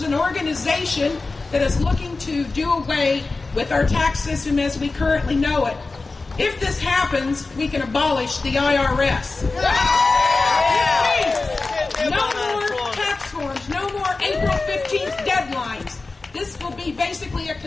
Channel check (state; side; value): quieter; right; 3.7 dB